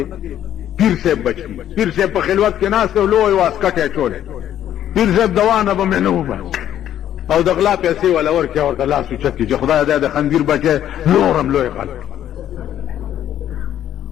پیر صاحب بچ کیږي پیر صاحب په خلوت کې ناس ته لوی واسکټه چولې پیر صاحب دوانه به منو او د غلا پیسې ولا ورکه ورته لاس چت کې خدای دې د خندیر بچي نورم لوی خلک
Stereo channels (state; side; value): quieter; right; 11.1 dB